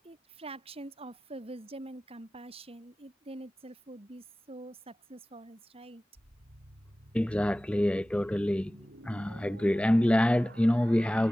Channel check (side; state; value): both; normal; correlation 0.97